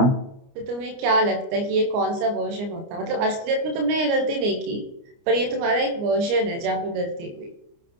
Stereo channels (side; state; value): left; late; 29 ms